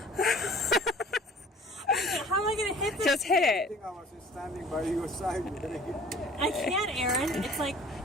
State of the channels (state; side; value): normal; both; correlation 0.48